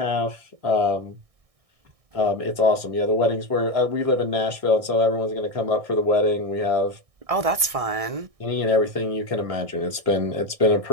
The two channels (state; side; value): late; left; 1.6 ms